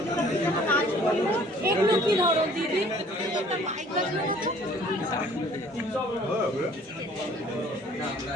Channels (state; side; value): normal; both; correlation 0.54